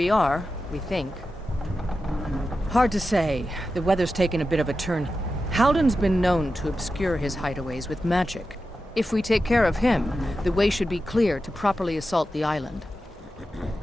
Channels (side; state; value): both; normal; correlation 0.91